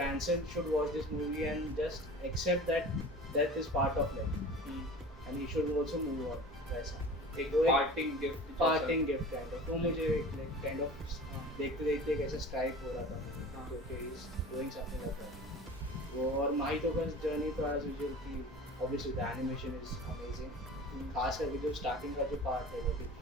should watch this movie and just accept that death is part of life, and he should also move on वैसा। एक वो एक parting gift parting gift kind of, तो मुझे like kind of देखते देखते कैसे strike हो रहा था हाँ। तो okay is doing something like that. वो और माहितो का जर्नी तो एज यूजुअल की obviously the animation is amazing, खास करके जो स्टार्टिंग का जो पार्ट है वो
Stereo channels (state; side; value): normal; both; correlation 0.39